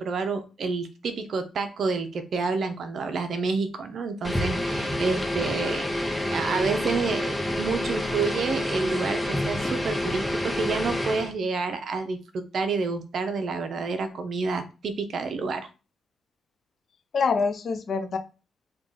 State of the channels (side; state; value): both; normal; correlation 0.81